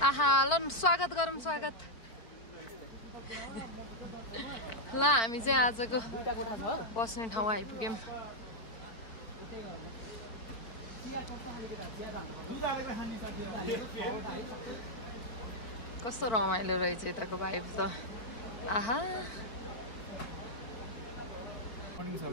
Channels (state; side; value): late; right; 4.4 ms